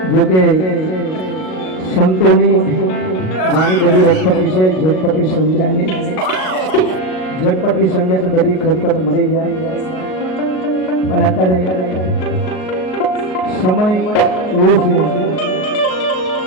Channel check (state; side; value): late; right; 38 ms